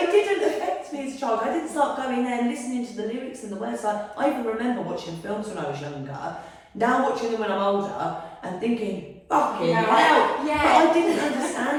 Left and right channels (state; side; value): identical; both; correlation 1.00